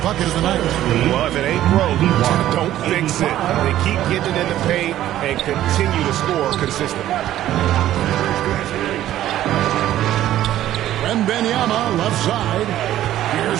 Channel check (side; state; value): left; quieter; 13.0 dB